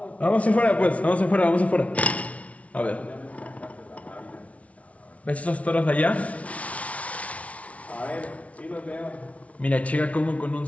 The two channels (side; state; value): right; late; 0.065 ms